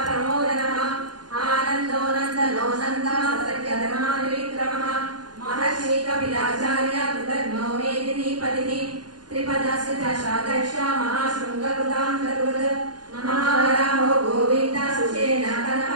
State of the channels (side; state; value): left; late; 0.70 ms